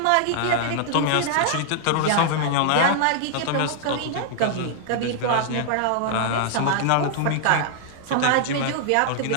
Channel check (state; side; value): different; both; correlation -0.01